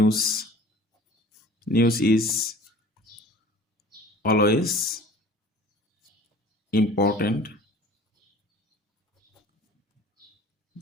news is always important,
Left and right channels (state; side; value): normal; both; correlation 0.46